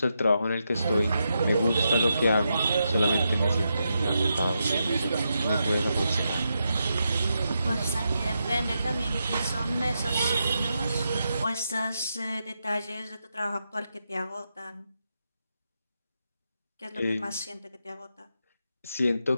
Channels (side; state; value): both; inverted; correlation -0.85